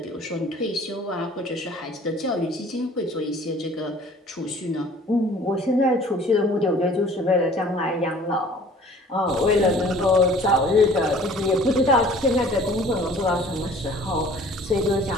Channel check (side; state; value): both; normal; correlation 0.50